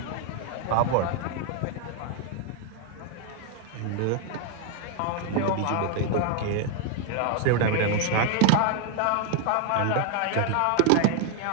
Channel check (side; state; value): both; different; correlation 0.00